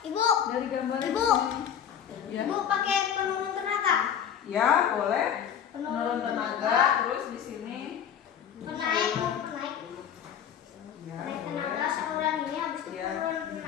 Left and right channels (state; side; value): quieter; right; 8.9 dB